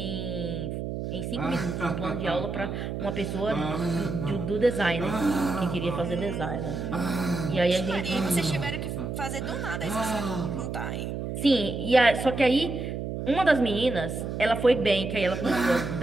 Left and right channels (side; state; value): right; noise; hum, 4 dB below the sound